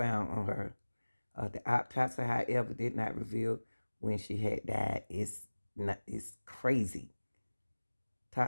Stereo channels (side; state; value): both; inverted; correlation -1.00